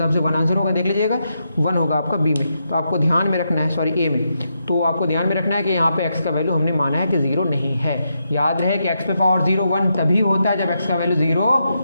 से 1 आंसर होगा, देख लीजिएगा 1 होगा आपका बी में। तो आपको ध्यान में रखना है, सॉरी ए में, तो आपको ध्यान में रखना है कि यहाँ पे x का वैल्यू हमने माना है कि 0 नहीं है। याद रहे कि x पे पावर 0 1 तभी होता है जब x का वैल्यू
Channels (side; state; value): both; inverted; correlation -0.83